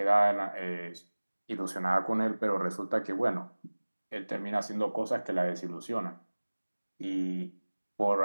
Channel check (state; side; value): inverted; both; correlation -1.00